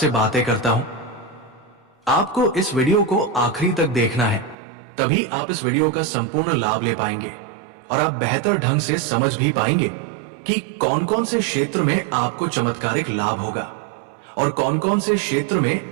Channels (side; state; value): left; drops out; at 4.5 s